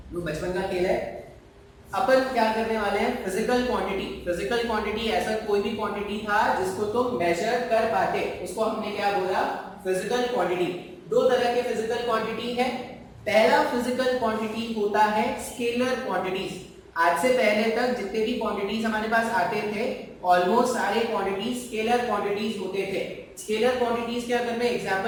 वो बचपन का खेल है। अपन क्या करने वाले हैं? Physical quantity. फिजिकल क्वांटिटी ऐसा कोई भी क्वांटिटी था जिसको तुम मेजर कर पाते, उसको हमने क्या बोला? Physical quantity. दो तरह के फिजिकल क्वांटिटी है। पहला फिजिकल क्वांटिटी होता है स्केलर क्वांटिटीज। आज से पहले तक जितने भी क्वांटिटीज हमारे पास आते थे ऑलमोस्ट सारे क्वांटिटीज स्केलर क्वांटिटीज होते थे। स्केलर क्वांटिटीज के अगर मैं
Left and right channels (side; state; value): both; identical; correlation 1.00